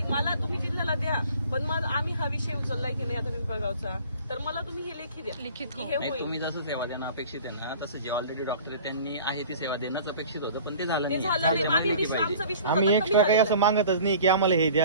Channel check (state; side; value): inverted; both; correlation -0.46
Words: मला तुम्ही जिल्ह्याला द्या, पण मग आम्ही हा विषय उचललाय की नाही आता पिंपळगावचा, तर मला तुम्ही हे लेखी द्या. लिखित की हो. हे नाही, होईल. तुम्ही जसं सेवा देणं अपेक्षित आहे ना, तसं जे ऑलरेडी डॉक्टर त्यांनी आहे ती सेवा देणंच अपेक्षित होतं, पण ते झालं ते नाही. झालं नाही. आम्ही आमचा विश्वास आम्ही आता एक्स्ट्रा कमी काही असं मागतच नाही की आम्हाला हे द्या